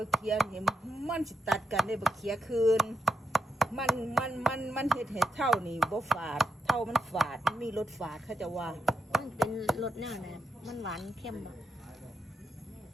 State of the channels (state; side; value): normal; both; correlation 0.85